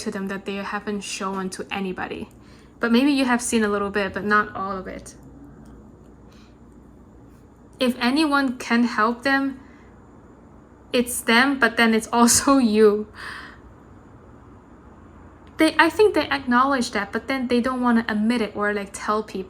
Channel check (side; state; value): both; identical; correlation 1.00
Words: them that they haven't shown to anybody, but maybe you have seen a little bit, but not all of it. If anyone can help them, it's them, but then it's also you. I think they acknowledge that, but then they don't want to admit it or like tell